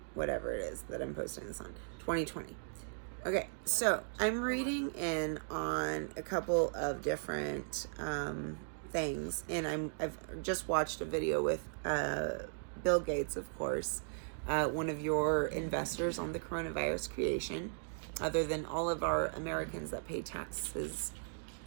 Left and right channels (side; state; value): left; silent; digital silence